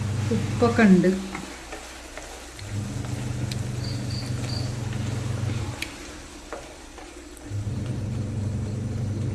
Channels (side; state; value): both; identical; correlation 1.00